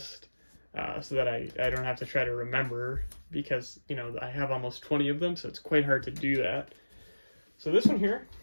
so that I don't have to try to remember, because I have almost 20 of them, so it's quite hard to do that. So this one here,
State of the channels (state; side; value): inverted; both; correlation -1.00